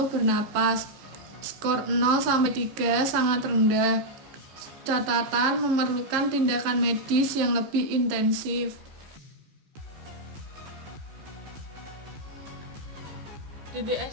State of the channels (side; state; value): left; late; 14 ms